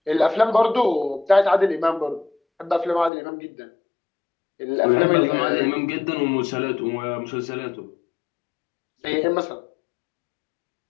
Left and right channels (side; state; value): right; drops out; at 3.1 s